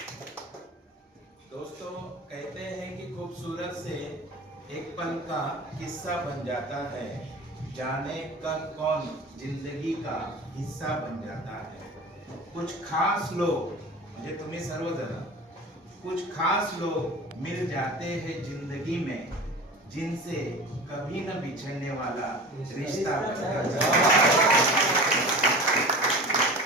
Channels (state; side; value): normal; both; correlation 0.35